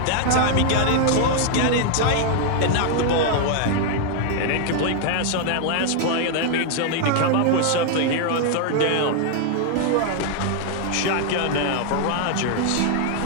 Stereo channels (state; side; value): different; both; correlation 0.00